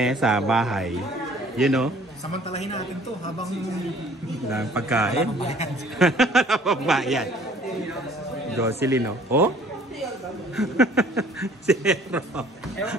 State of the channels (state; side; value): normal; both; correlation 0.54